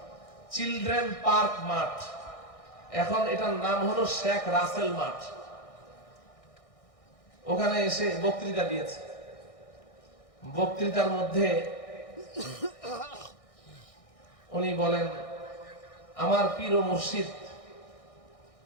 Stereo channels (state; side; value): late; right; 1.6 ms